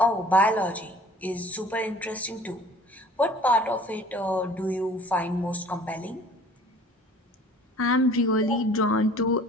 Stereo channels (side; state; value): both; normal; correlation 0.49